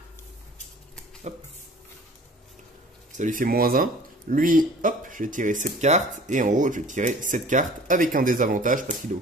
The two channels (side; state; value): both; normal; correlation 0.48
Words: Hop. Ça lui fait -1. Lui, hop, je vais tirer cette carte. Et en haut, je vais tirer cette carte avec un désavantage parce qu'il est au